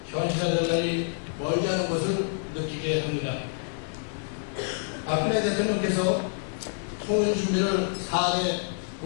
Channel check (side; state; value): right; silent; digital silence